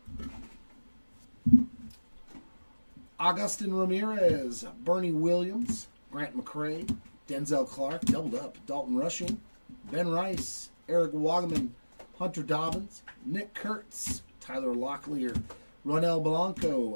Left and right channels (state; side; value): inverted; both; correlation -1.00